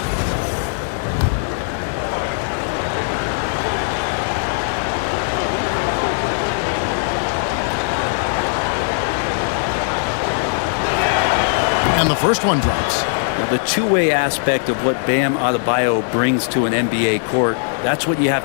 And the first one drops. Well, the two-way aspect of what Bam Adebayo brings to an NBA court, that's what you have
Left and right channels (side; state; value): right; silent; digital silence